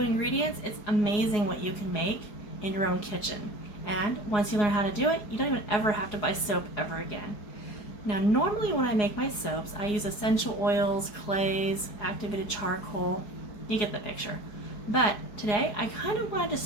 it's amazing what you can make in your own kitchen. And once you learn how to do it, you don't even ever have to buy soap ever again. Now normally when I make my soaps I use essential oils, clays, activated charcoal. You get the picture. But today I kind of wanted to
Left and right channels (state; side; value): late; right; 4.8 ms